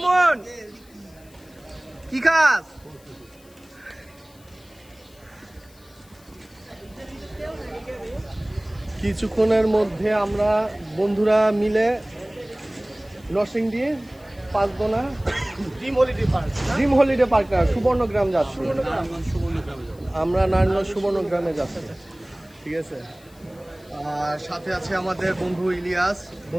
কি খাস? কিছুক্ষণের মধ্যে আমরা বন্ধুরা মিলে Narsingdi Panchdona dream holiday park না সুবর্ণগ্রাম যাচ্ছি। আমরা নারায়ণগঞ্জ সুবর্ণগ্রামে যাচ্ছি, ঠিক আছে। আর সাথে আছে আমাদের বন্ধু ইলিয়াস,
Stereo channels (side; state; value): left; noise; hiss, 27 dB below the sound